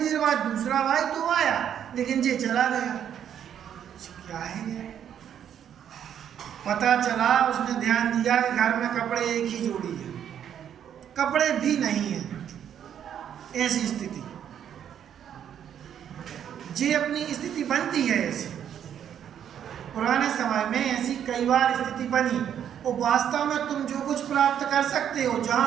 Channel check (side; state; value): left; quieter; 9.3 dB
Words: बाद दूसरा भाई तो आया, लेकिन ये चला गया। क्या है ये? पता चला, उसने ध्यान दिया कि घर में कपड़े एक ही जोड़ी है, कपड़े भी नहीं है। ऐसी स्थिति, ये अपनी स्थिति बनती है ऐसी। पुराने समय में ऐसी कई बार स्थिति बनी। और वास्तव में तुम जो कुछ प्राप्त कर सकते हो, जहाँ